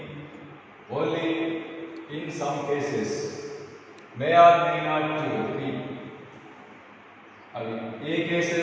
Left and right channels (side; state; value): both; identical; correlation 1.00